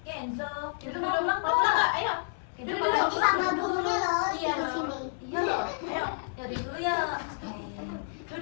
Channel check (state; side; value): silent; right; digital silence